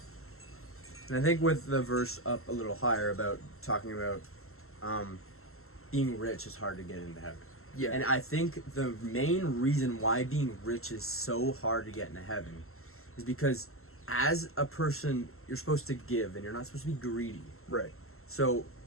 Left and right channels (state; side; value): late; right; 0.62 ms